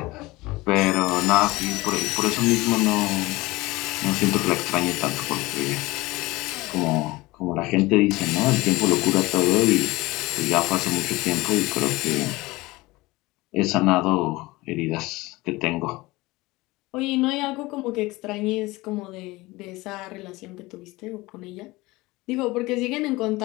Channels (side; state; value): right; quieter; 21.0 dB